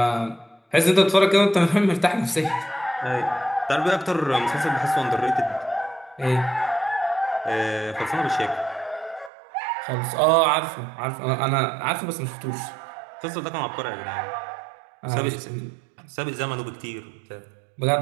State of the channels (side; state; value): left; drops out; at 9.3 s